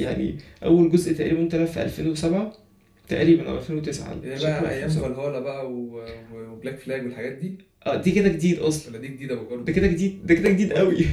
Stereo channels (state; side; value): identical; both; correlation 1.00